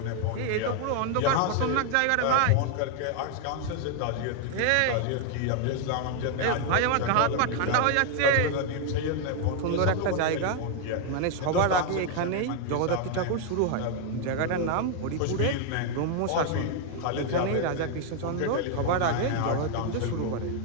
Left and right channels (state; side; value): different; both; correlation 0.00